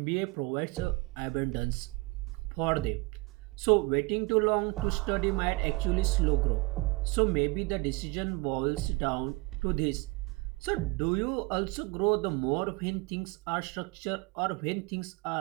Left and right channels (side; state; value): left; quieter; 25.1 dB